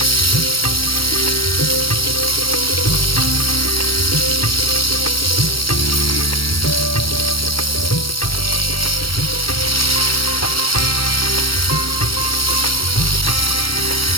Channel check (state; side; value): late; right; 0.74 ms